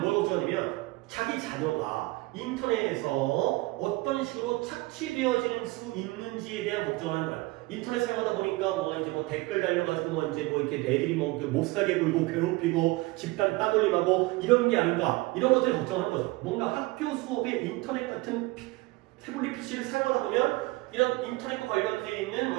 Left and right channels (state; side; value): quieter; left; 22.0 dB